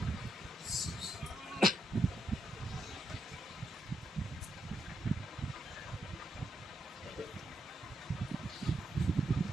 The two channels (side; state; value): both; normal; correlation 0.81